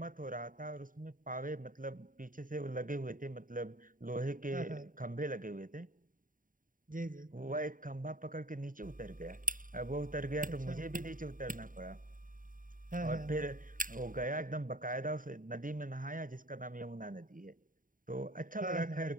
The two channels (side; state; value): left; late; 0.39 ms